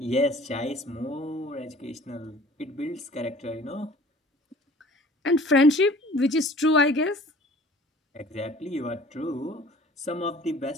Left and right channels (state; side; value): normal; both; correlation 0.49